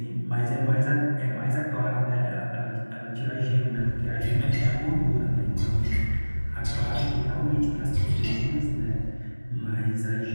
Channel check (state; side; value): inverted; both; correlation -1.00